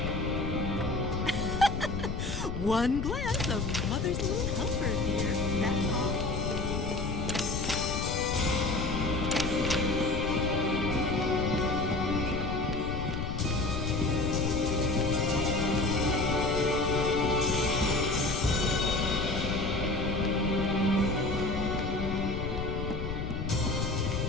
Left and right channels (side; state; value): left; noise; rumble, 4 dB below the sound